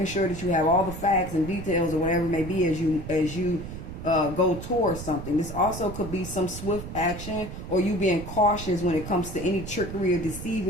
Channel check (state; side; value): noise; right; rumble, 9 dB below the sound